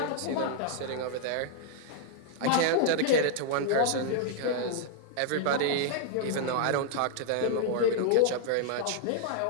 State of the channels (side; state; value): both; different; correlation -0.01